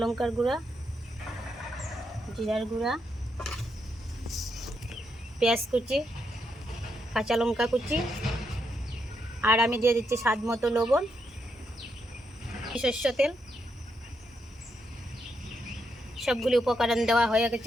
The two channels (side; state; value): both; normal; correlation 0.81